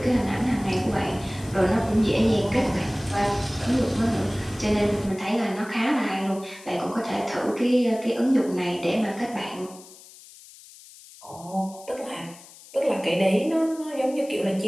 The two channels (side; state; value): left; noise; hiss, 20 dB below the sound